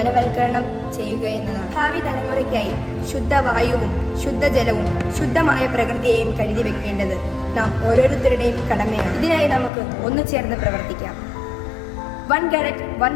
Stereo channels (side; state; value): right; drops out; at 9.7 s